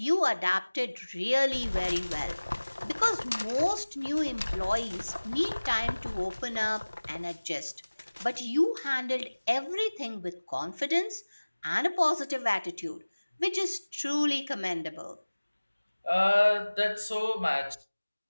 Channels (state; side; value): inverted; both; correlation -1.00